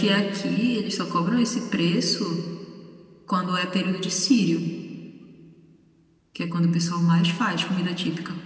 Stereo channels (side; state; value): both; identical; correlation 1.00